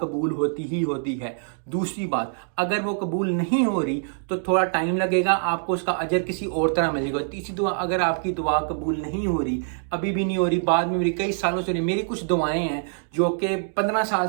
होती ही होती है। दूसरी बात, अगर वो कबूल नहीं हो रही तो थोड़ा टाइम लगेगा, आपको उसका अजर किसी और तरह मिलेगा। तीसरी दुआ, अगर आपकी दुआ कबूल नहीं हो रही, अभी भी नहीं हो रही, बाद में मेरी कई सालों से नहीं, मेरी कुछ दुआएं हैं जो कि 15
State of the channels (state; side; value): silent; left; digital silence